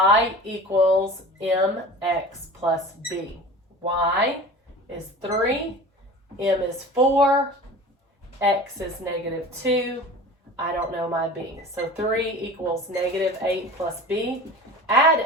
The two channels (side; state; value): both; normal; correlation 0.38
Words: equals mx plus b. Y is 3, m is 4, x is negative 2. I don't know my b. So 3 equals negative 8 plus b.